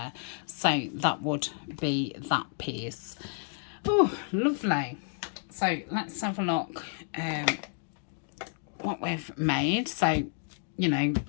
So that would be that piece. Oh, lovely. So let's have a look what we've made. So, you know,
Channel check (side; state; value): right; silent; 57 dB below the other